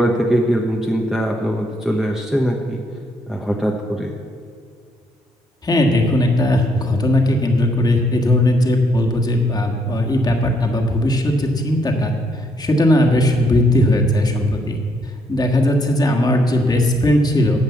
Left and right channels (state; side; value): normal; both; correlation 0.72